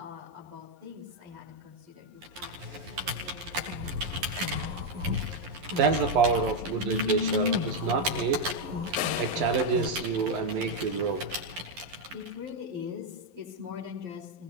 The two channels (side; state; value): left; late; 11 ms